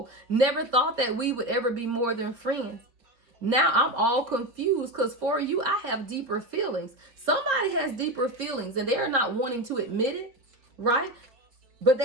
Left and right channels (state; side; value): late; left; 4.2 ms